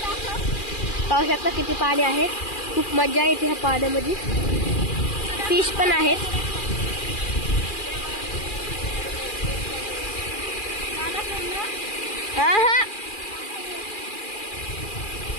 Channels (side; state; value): right; late; 2.4 ms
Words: पाहू शकता किती पाणी आहे. खूप मजा येते ह्या पाण्यामध्ये. फिश पण आहेत. हा हा